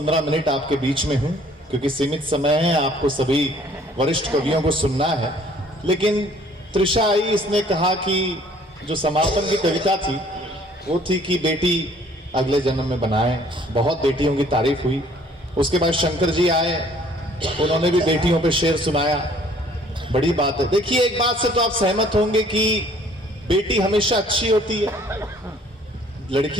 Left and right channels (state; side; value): normal; both; correlation 0.58